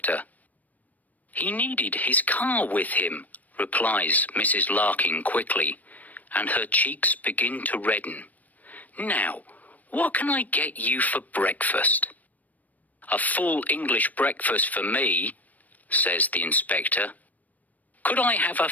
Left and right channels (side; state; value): right; late; 0.078 ms